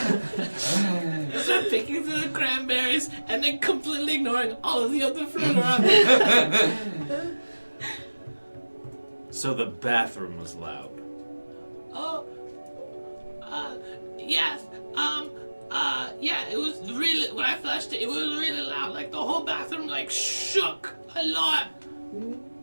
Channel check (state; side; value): inverted; both; correlation -1.00